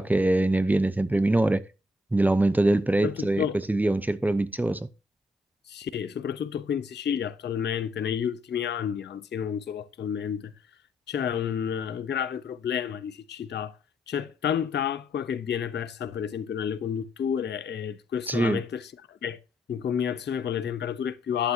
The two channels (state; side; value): normal; both; correlation 0.73